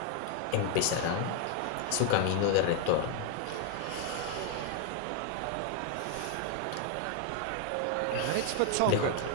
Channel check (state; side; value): different; both; correlation 0.01